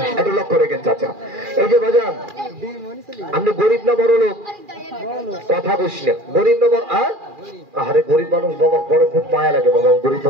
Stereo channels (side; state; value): left; late; 2.4 ms